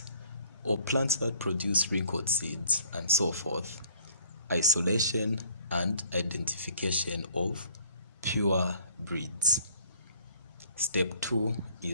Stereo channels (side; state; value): both; inverted; correlation -0.58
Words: or plants that produce wrinkled seeds, and so forth. Isolation and identification of pure breeds. Step two